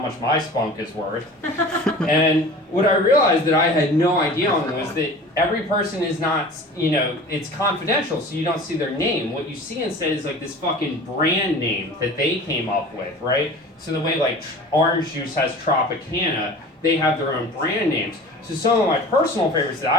my spunk is worth. And what I realized that I had no idea on was that every person is not, it's confidential, so you don't see their name. What you see instead is like this fucking brand name that they came up with, right? So the way like orange juice has Tropicana, they have their own brand names. So some of my personal favorites that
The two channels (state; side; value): normal; both; correlation 0.40